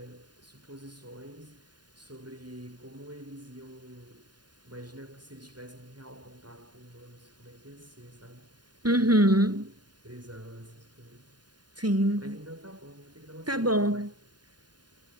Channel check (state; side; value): late; left; 0.70 ms